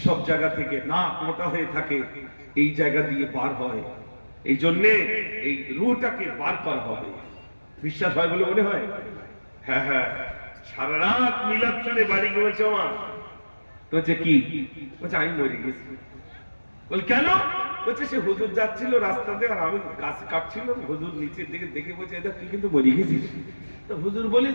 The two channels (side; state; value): both; inverted; correlation -1.00